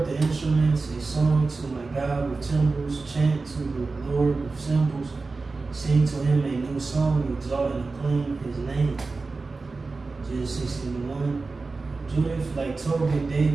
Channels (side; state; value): left; quieter; 3.9 dB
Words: the instruments, a song to my God with timbrels, chant to the Lord with cymbals, sing to him a new song, exalt and acclaim his name. Genesis 61. Judith, like Tobit,